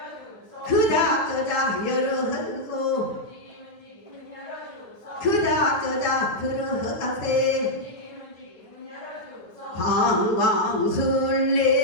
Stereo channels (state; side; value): late; right; 9.4 ms